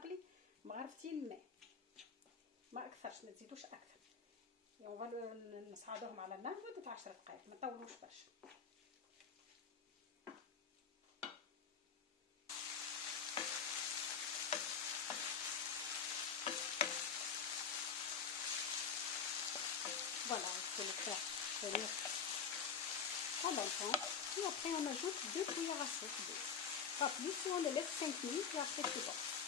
مغرفتين ماء، ما أكثرش، ما تزيدوش أكثر. Et on va نصعدوهم على النار لمدة 10 دقائق، ما نطولوش برشا. Voilà, il faut le faire venir pendant longtemps. Et après, on ajoute 2 cuillères à soupe d'eau. Pas plus, et on le laisse 5 minutes et après c'est bon.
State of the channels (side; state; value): right; quieter; 6.6 dB